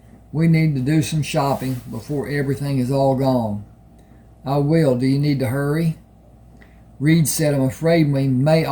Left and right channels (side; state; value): both; identical; correlation 1.00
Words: We need to do some shopping before everything is all gone. I will. Do you need to hurry? Reed said, I'm afraid we may